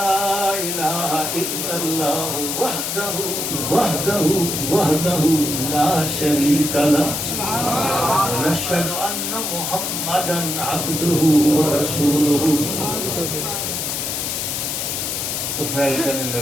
إله إلا الله وحده لا شريك له ونشهد أن محمدا عبده ورسوله۔ تو فیل کرنے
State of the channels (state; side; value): noise; left; hiss, 2 dB below the sound